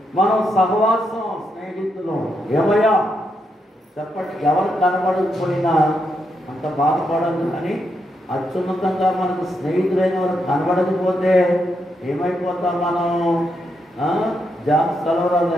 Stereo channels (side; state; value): both; normal; correlation 0.81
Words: మనం సహవాసం, స్నేహితులు. ఏమయ్యా చెప్పండి, ఎవరు కనబడకపోయినా అంత బాధపడదు. కానీ అత్యున్నతంగా మనకు స్నేహితులైన వారు కనబడకపోతే ఏమైపోతాం మనం? జాబ్ సెలవురాలు